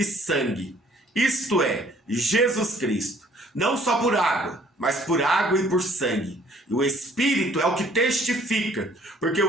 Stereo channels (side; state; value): both; normal; correlation 0.59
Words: sangue, isto é, Jesus Cristo. Não só por água, mas por água e por sangue. E o Espírito é o que testifica, porque